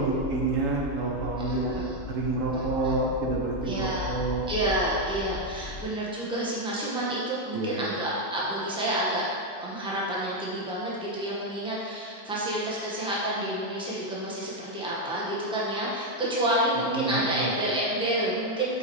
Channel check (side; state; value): both; normal; correlation 0.04